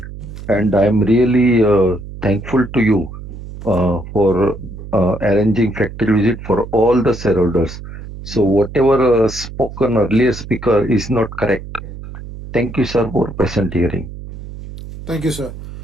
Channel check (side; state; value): right; noise; hum, 12 dB below the sound